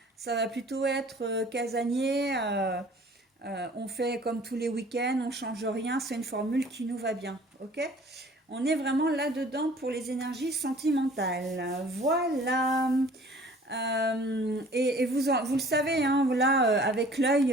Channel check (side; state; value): both; normal; correlation 0.50